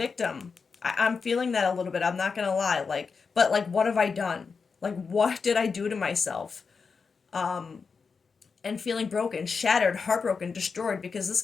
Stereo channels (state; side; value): quieter; right; 5.2 dB